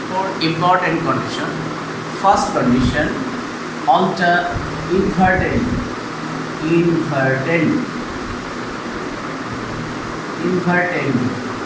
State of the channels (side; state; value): both; identical; correlation 1.00